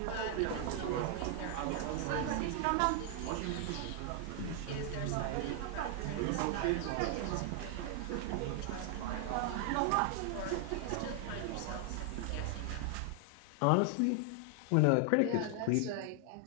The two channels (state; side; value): different; both; correlation 0.00